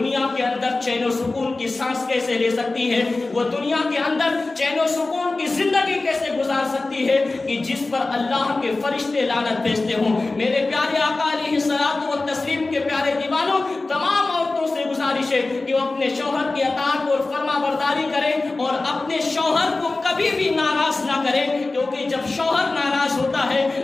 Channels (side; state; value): right; quieter; 3.3 dB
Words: کے اندر چین و سکون کی سانس کیسے لے سکتی ہے, وہ دنیا کے اندر چین و سکون کی زندگی کیسے گزار سکتی ہے کہ جس پر اللہ کے فرشتے لعنت بھیجتے ہوں. میرے پیارے آقا علیہ الصلوۃ والتسلیم کے پیارے دیوانوں, تمام عورتوں سے گزارش ہے کہ وہ اپنے شوہر کی اطاعت اور فرما برداری کریں اور اپنے شوہر کو کبھی بھی ناراض نہ کریں, کیونکہ جب شوہر ناراض ہوتا ہے